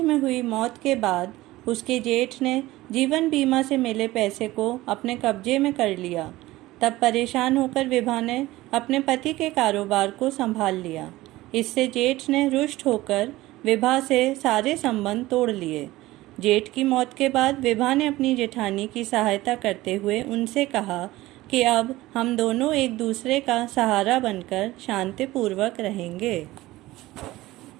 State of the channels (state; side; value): quieter; left; 17.8 dB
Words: हुई मौत के बाद उसके जेठ ने जीवन बीमा से मिले पैसे को अपने कब्जे में कर लिया। तब परेशान होकर विभा ने अपने पति के कारोबार को संभाल लिया। इससे जेठ ने रुष्ट होकर विभा से सारे संबंध तोड़ लिए। जेठ की मौत के बाद विभा ने अपनी जेठानी की सहायता करते हुए उनसे कहा कि अब हम दोनों एक दूसरे का सहारा बनकर शांतिपूर्वक रहेंगे।